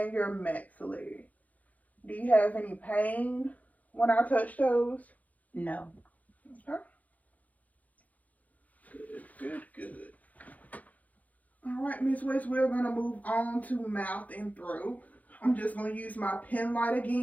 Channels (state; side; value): late; right; 0.077 ms